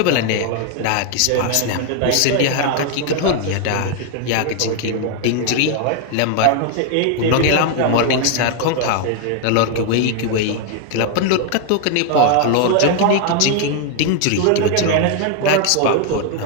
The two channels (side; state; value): both; different; correlation 0.00